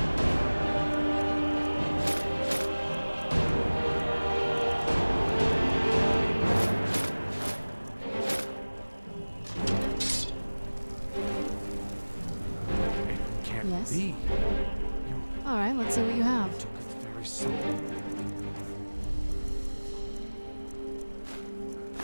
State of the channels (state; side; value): inverted; both; correlation -1.00